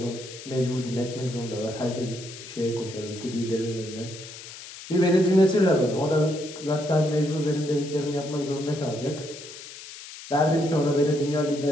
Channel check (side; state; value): left; noise; hiss, 14 dB below the sound